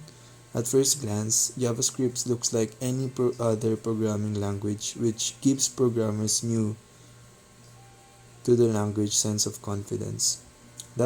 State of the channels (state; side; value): identical; both; correlation 1.00